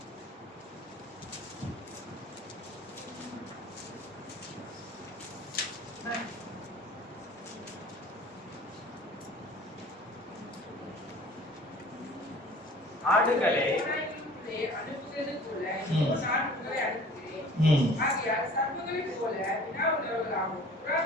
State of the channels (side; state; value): both; normal; correlation 0.46